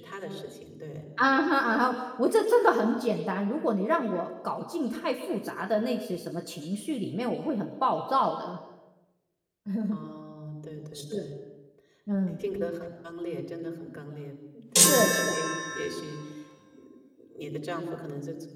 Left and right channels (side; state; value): both; identical; correlation 1.00